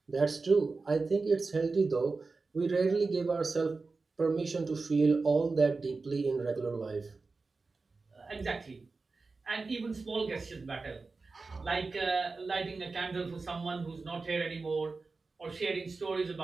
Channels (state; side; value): quieter; left; 4.0 dB